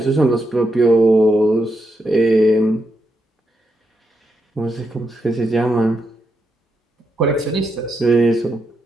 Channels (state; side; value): normal; both; correlation 0.81